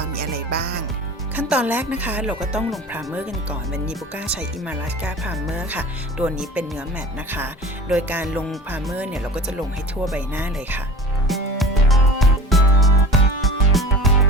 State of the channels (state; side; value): normal; both; correlation 0.38